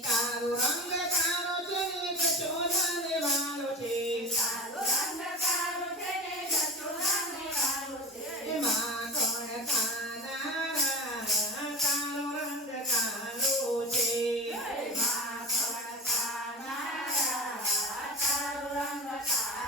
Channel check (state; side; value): normal; both; correlation 0.30